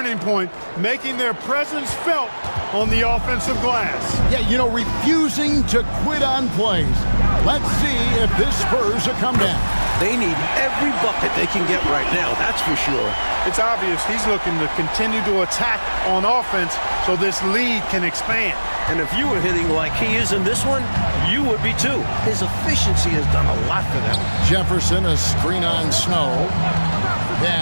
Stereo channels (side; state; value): both; inverted; correlation -1.00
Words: point, making their presence felt on the offensive glass. Yeah, you know, refusing to quit on plays. Let's see if this spurs a comeback. They need every bucket they can get right now, that's for sure. It's obvious he's looking to continue to attack on offense so this lead can expand. And if you were hitting like he is in this one, you would be too. His efficiency has done a lot for them. Jefferson, a screen on Snow.